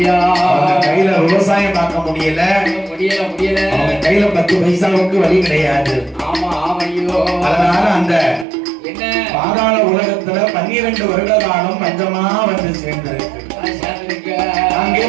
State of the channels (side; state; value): left; drops out; at 8.5 s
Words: கையில விவசாயம் பார்க்க முடியல. அவங்க கையில 10 பைசாவுக்கு வழி கிடையாது. அதனால அந்த பாதாள உலகத்துல 12 வருட காலம் பஞ்சமா வந்து சேர்ந்திருக்கு. அங்கே